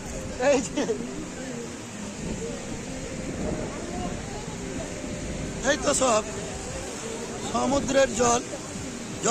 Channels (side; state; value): both; identical; correlation 1.00